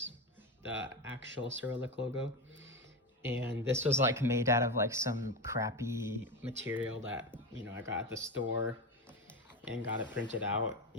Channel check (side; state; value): both; normal; correlation 0.17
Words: the actual Cyrillic logo. And this was like made out of like some crappy material that, you know, I got at the store and got it printed out.